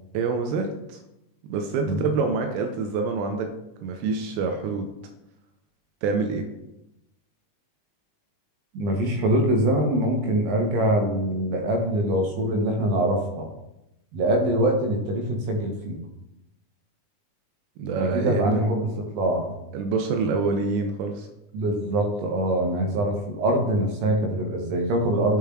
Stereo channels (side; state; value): left; late; 20 ms